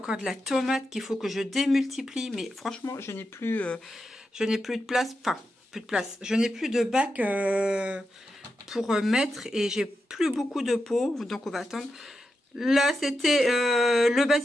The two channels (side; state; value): both; normal; correlation 0.88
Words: de la tomate qu'il faut que je démultiplie. Mais franchement, je n'ai plus de place. Enfin, plus de place. Je n'ai plus de bac pour mettre. Et j'ai plus beaucoup de pots. Donc, on va attendre. Là, c'était le